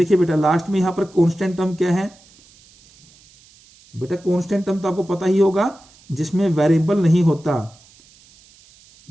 बेटा लास्ट में यहां पर कांस्टेंट टर्म क्या है, बेटा कांस्टेंट टर्म तो आपको पता ही होगा जिसमें वेरिएबल नहीं होता।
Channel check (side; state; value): right; noise; hiss, 28 dB below the sound